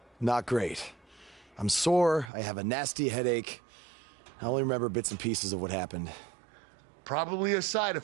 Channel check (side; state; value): left; drops out; at 2.3 s